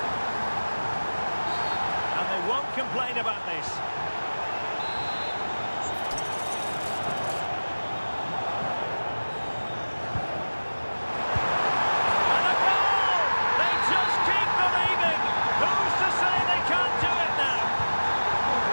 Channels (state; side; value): inverted; both; correlation -1.00